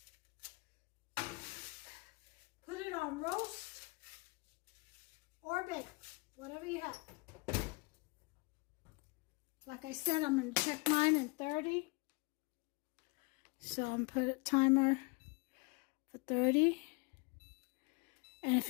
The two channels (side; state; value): right; quieter; 28.7 dB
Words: Put it on roast or bake, whatever you have. Like I said, I'm going to check mine in 30. So I'm going to put a timer for 30. And if